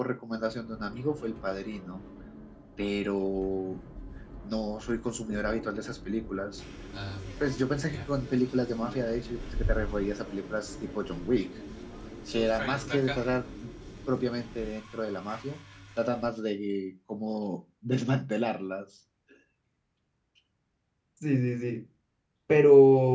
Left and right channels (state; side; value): identical; both; correlation 1.00